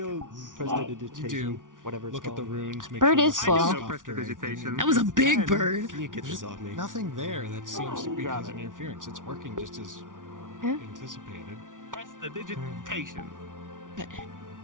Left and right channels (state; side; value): late; left; 0.88 ms